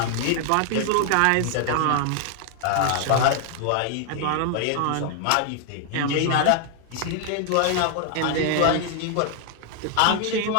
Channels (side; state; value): both; different; correlation 0.00